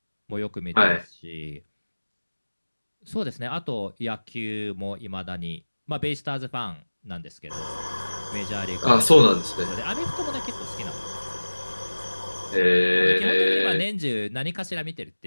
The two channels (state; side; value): inverted; both; correlation -1.00